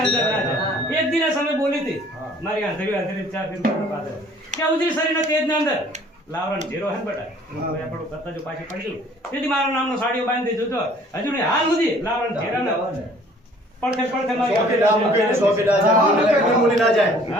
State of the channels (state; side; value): normal; both; correlation 0.55